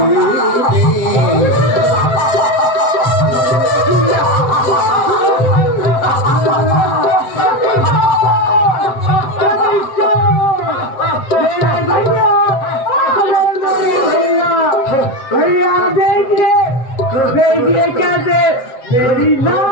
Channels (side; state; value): right; late; 7.8 ms